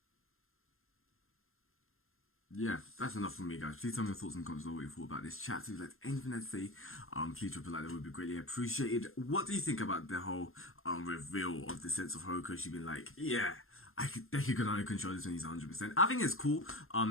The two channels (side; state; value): right; late; 0.61 ms